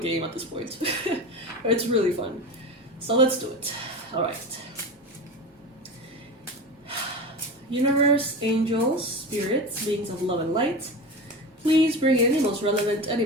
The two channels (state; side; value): normal; both; correlation 0.27